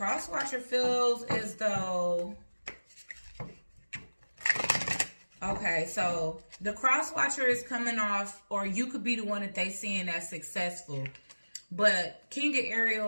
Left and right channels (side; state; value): both; inverted; correlation -1.00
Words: watcher feels as though, okay, so the cross watcher is coming off, or you could be the one that they seeing as successful. But King of